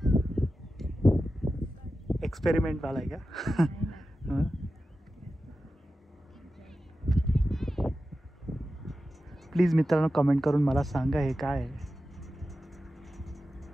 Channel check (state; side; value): normal; both; correlation 0.93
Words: एक्सपेरिमेंट वाला आहे का? प्लीज मित्रांनो कमेंट करून मला सांगा हे काय आहे.